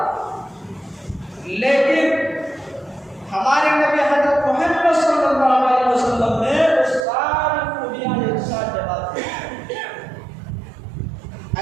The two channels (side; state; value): left; drops out; at 7.1 s